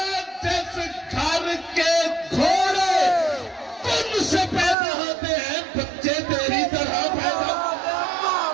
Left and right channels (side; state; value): left; drops out; at 4.8 s